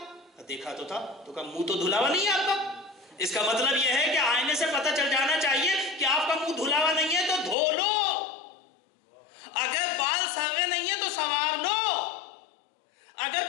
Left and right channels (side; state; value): right; drops out; at 7.6 s